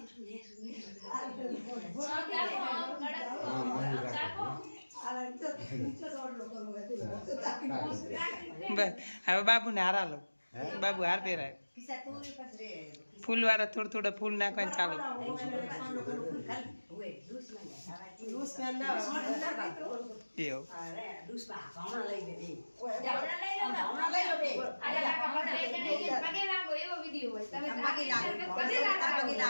હવે બાબુને હારા લો બાબુ હાર પહેરાય ફૂલ વાળા થોડા થોડા ફૂલ નાખવાનું ચાલુ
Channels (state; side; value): inverted; both; correlation -1.00